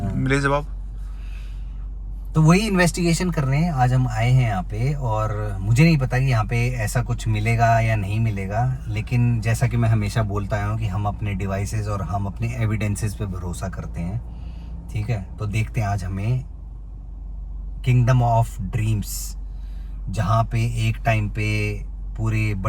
मिले जवाब। तो वही इन्वेस्टिगेशन करने आज हम आए हैं यहाँ पे, और मुझे नहीं पता कि यहाँ पे ऐसा कुछ मिलेगा या नहीं मिलेगा, लेकिन जैसा कि मैं हमेशा बोलता आया हूँ कि हम अपने डिवाइसेस और हम अपने एविडेंसेस पे भरोसा करते हैं, ठीक है। तो देखते हैं आज हमें किंगडम ऑफ ड्रीम्स, जहाँ पे एक टाइम पे पूरे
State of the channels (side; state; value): both; identical; correlation 1.00